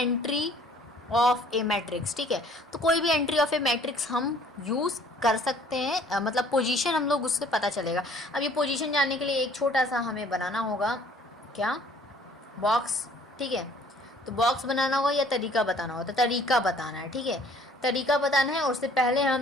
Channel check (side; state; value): both; normal; correlation 0.56